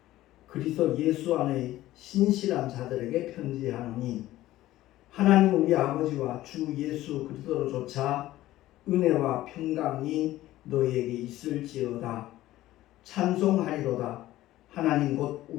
그리스도 예수 안의 신실한 자들에게 편지하노니, 하나님 우리 아버지와 주 예수 그리스도로조차 은혜와 평강이 너희에게 있을지어다. 찬송하리로다. 하나님 곧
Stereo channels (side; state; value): right; quieter; 15.4 dB